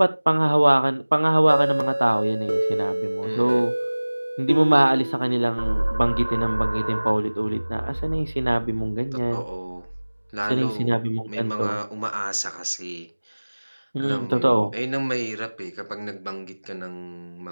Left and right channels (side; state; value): both; inverted; correlation -1.00